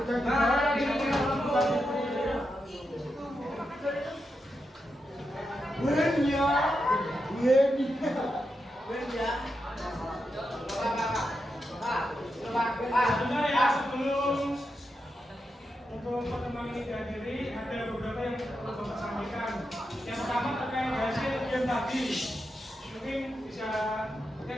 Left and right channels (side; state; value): both; normal; correlation 0.86